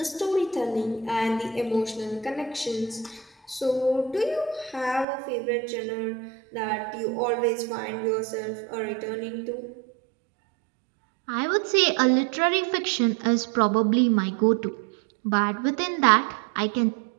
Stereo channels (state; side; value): drops out; left; at 5.1 s